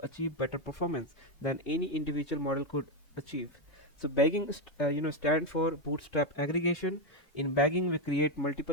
achieve better performance than any individual model could achieve. So bagging stand for bootstrap aggregation. In bagging, we create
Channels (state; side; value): late; right; 2.7 ms